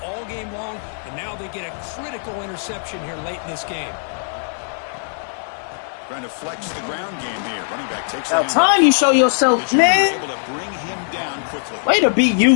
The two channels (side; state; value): right; silent; digital silence